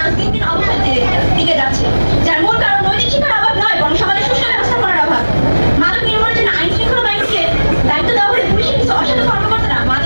দিন দিন অবনতির দিকে যাচ্ছে, যার মূল কারণ নৈতিক শিক্ষার অভাব নয়, বরং সমাজের সুষ্ঠু ব্যবস্থাপনার অভাব। মাদক নির্মূলের জন্য আইন শৃঙ্খলা বাহিনীকে দায়িত্ব দেওয়া হলে পুলিশের কিছু অসাধু কর্মকর্তারা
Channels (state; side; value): inverted; both; correlation -1.00